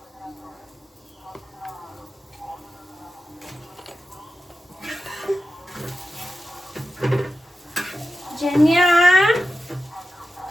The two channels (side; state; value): both; normal; correlation 0.91